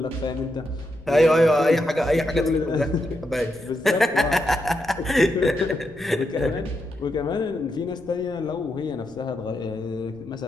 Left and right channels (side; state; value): left; noise; rumble, 23 dB below the sound